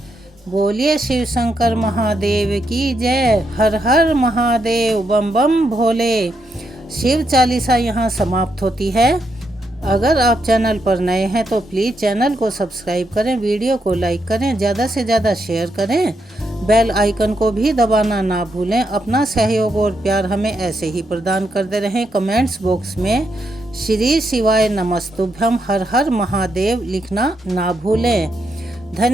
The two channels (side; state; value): both; normal; correlation 0.81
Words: बोलिए शिव शंकर महादेव की जय। हर हर महादेव, बम बम भोले। शिव 40 यहाँ समाप्त होती है। अगर आप चैनल पर नए हैं तो प्लीज़ चैनल को सब्सक्राइब करें, वीडियो को लाइक करें, ज़्यादा से ज़्यादा शेयर करें, बेल आइकन को भी दबाना ना भूलें। अपना सहयोग और प्यार हमें ऐसे ही प्रदान करते रहें। कमेंट्स बॉक्स में श्री शिवाय नमस्तुभ्यम हर हर महादेव लिखना ना भूलें।